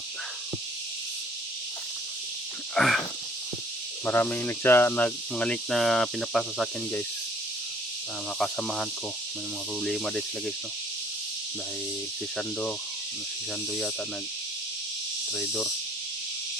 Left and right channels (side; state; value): both; normal; correlation 0.57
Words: maraming mga link na pinapasa sa akin guys, makasamahan ko, may mga problema din sila guys, no, dahil si Sando yata nag trader